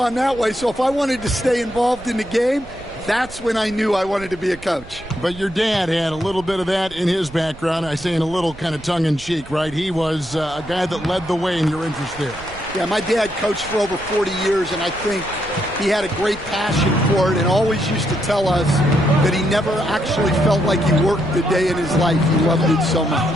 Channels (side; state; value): right; noise; rumble, 19 dB below the sound